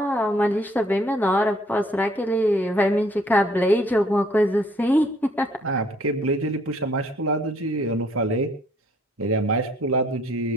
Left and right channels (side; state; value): both; normal; correlation 0.63